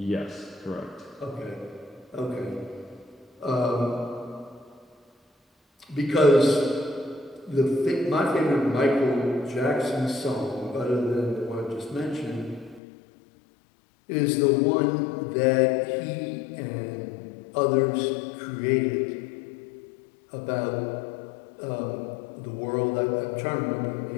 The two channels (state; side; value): drops out; right; at 12.8 s